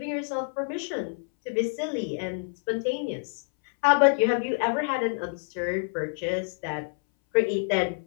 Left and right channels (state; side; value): silent; right; 60 dB below the other